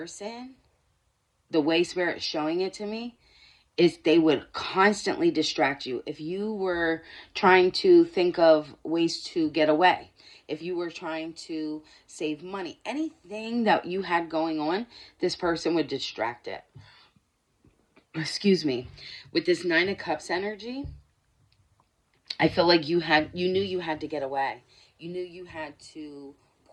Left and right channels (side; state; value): both; identical; correlation 1.00